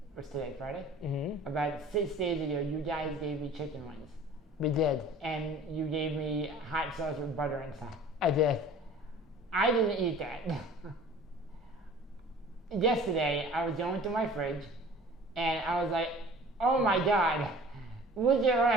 what's today, Friday? Mm-hmm. About 6 days ago, you guys gave me chicken wings. We did. And you gave me hot sauce with butter inside. I did. I didn't eat that. Yesterday, I was going through my fridge, and I was like, oh my God, look at what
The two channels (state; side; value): normal; both; correlation 0.45